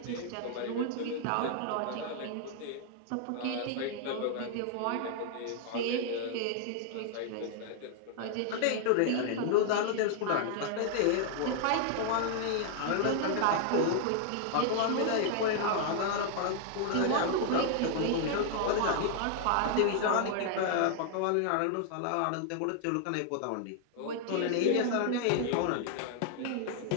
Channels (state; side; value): different; both; correlation 0.00